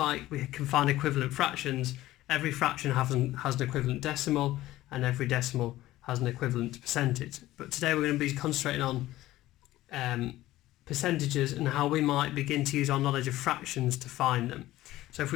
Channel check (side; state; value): right; quieter; 15.9 dB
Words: we can find equivalent fractions, every fraction has an equivalent decimal, and every decimal has an equivalent percentage. But today we're going to be concentrating on percentages and how we might begin to use our knowledge of fractions to find them. So if